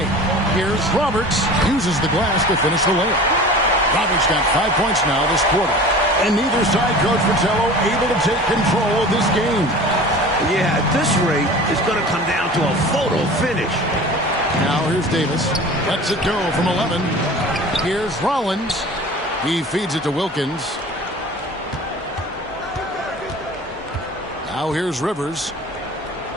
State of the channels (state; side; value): normal; both; correlation 0.40